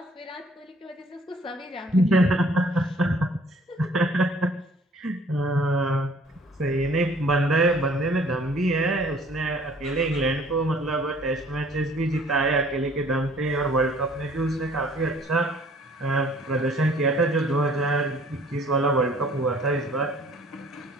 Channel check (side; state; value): both; normal; correlation 0.56